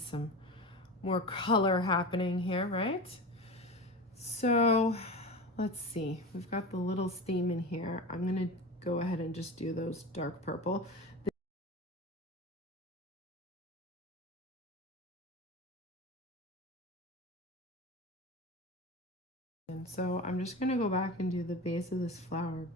more color happening here, right? So let's see, we've got the little theme in here. I'm gonna go ahead and just do those dark purple. And so I'm just gonna go back and do the base of this flower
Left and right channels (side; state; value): both; normal; correlation 0.28